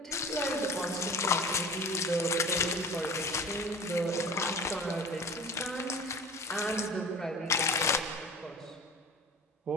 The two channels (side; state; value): both; normal; correlation 0.38